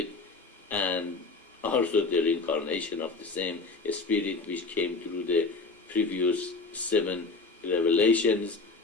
and also the reincarnation of the same spirit which came through the previous 7 revelations,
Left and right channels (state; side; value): quieter; right; 3.9 dB